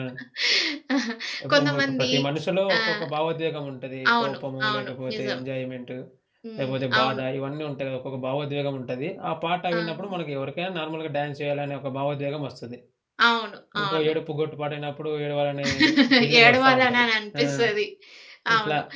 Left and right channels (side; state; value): both; identical; correlation 1.00